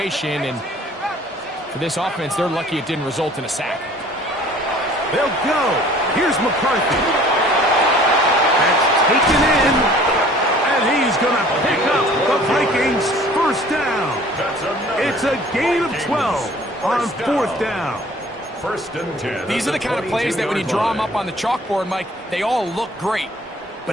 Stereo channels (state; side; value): normal; both; correlation 0.51